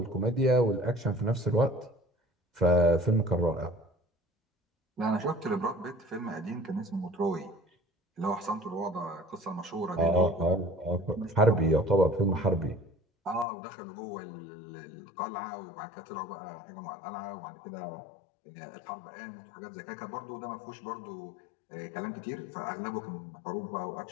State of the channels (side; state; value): right; drops out; at 13.5 s